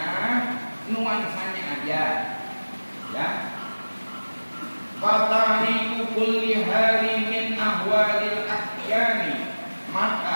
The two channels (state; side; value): inverted; both; correlation -1.00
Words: nuansanya aja. Ya. Fatariku kulli hari min ahwalil ahyani.